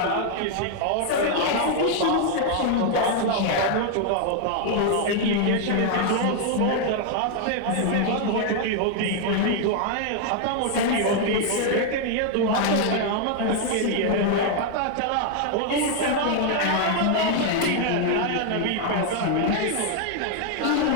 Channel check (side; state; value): both; different; correlation 0.00